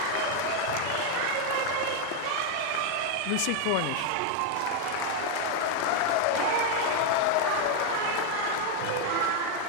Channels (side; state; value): both; different; correlation 0.01